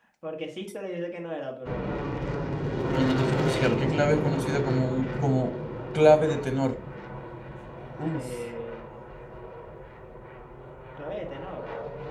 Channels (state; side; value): identical; both; correlation 1.00